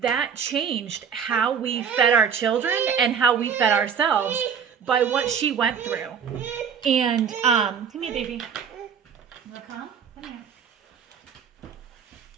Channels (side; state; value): left; quieter; 7.2 dB